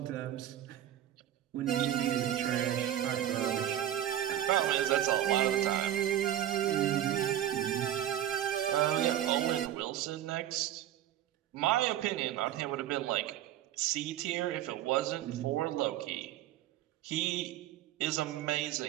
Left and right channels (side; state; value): left; quieter; 11.8 dB